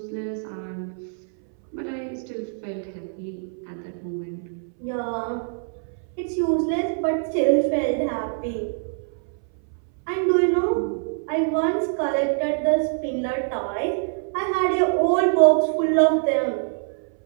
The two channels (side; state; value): left; silent; 62 dB below the other